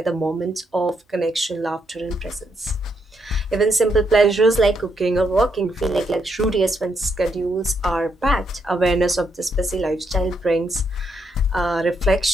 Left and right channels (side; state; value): both; normal; correlation 0.78